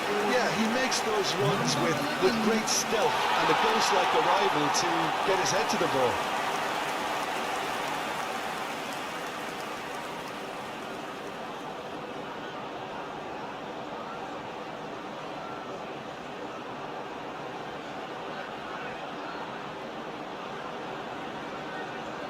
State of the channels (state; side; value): identical; both; correlation 1.00